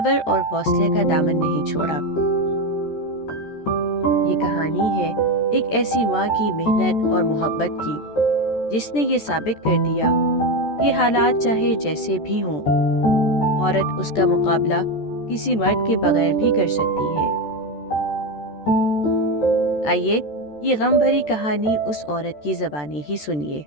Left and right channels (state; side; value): late; right; 14 ms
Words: اور حوصلے کا دامن نہیں چھوڑا۔ یہ کہانی ہے ایک ایسی ماں کی محنت اور محبت کی جس نے یہ ثابت کر دیا کہ حالات چاہے جیسے بھی ہوں، عورت اس کا مقابلہ کسی مرد کے بغیر بھی کر سکتی ہے۔ آئیے یہ غم بھری کہانی اس عورت کی زبانی ہی سنیے۔